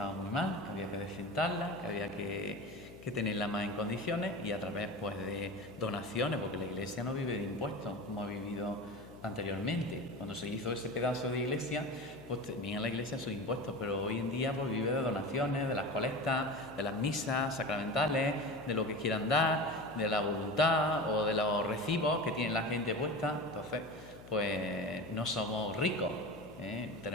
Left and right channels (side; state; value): left; noise; hum, 17 dB below the sound